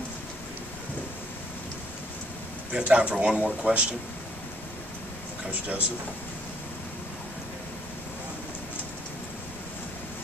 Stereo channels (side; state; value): both; normal; correlation 0.66